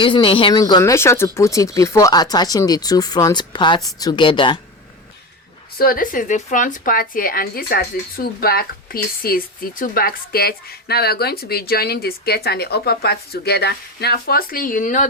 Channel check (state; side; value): normal; both; correlation 0.24